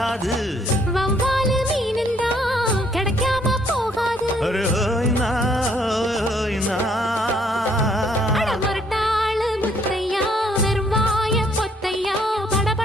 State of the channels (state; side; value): normal; both; correlation 0.67